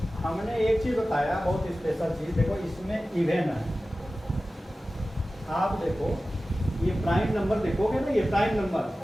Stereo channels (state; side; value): normal; both; correlation 0.95